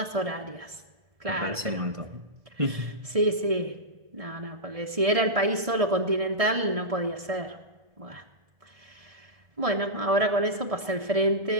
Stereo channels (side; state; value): left; late; 1.6 ms